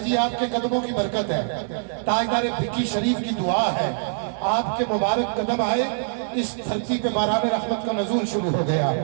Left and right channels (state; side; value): silent; left; 63 dB below the other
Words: جی آپ کے قدموں کی برکت ہے، تاجدار بھکی شریف کی دعا ہے. آپ کے مبارک قدم آئے، اس دھرتی پہ باران رحمت کا نزول شروع ہو گیا.